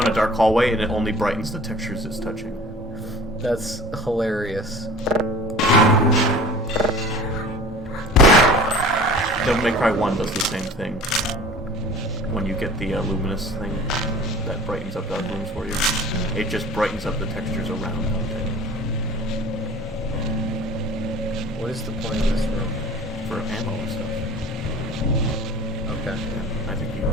a dark hallway, and it only brightens the textures it's touching. That's hilarious. Devil May Cry 1 does the same thing. When you get the luminous thing that brightens up dark rooms for you, it just brightens up the textures around it. What is the point of this room? For ammo and stuff. Okay. Yeah, I think you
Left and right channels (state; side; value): normal; both; correlation 0.44